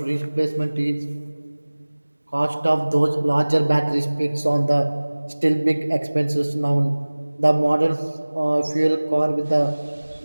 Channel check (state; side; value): inverted; both; correlation -1.00